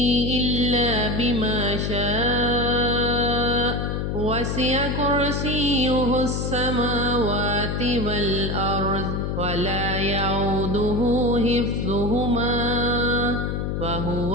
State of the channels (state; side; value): noise; left; hum, 1 dB below the sound